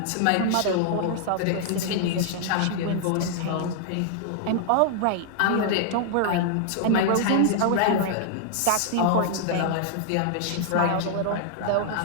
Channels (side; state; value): both; different; correlation 0.00